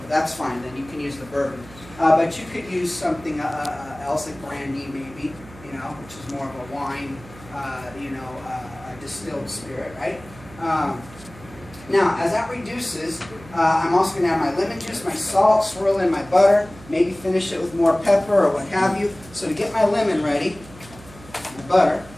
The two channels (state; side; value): noise; right; hum, 19 dB below the sound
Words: that's fine. Then you can use the bourbon. But you could use something else, like brandy maybe, you know, which is more of a wine, you know, a distilled spirit, right? Now, as that reduces, I'm also going to add my lemon juice, my salt, swirl in my butter, maybe finish it with more pepper or what have you. So to get my lemon ready, my butter,